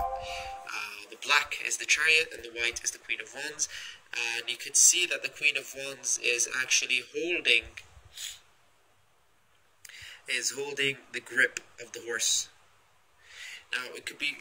The black is the Chariot and the white is the Queen of Wands. And you can see that the Queen of Wands is actually holding the grip of the horse. Now it could be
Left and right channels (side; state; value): both; identical; correlation 1.00